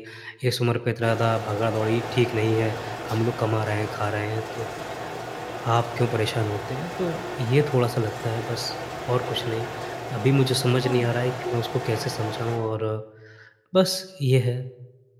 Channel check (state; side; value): identical; both; correlation 1.00